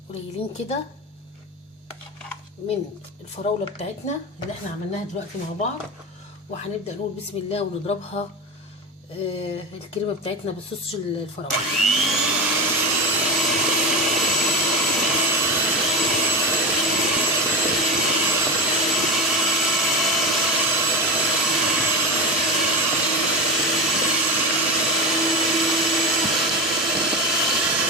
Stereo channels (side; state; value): both; normal; correlation 0.21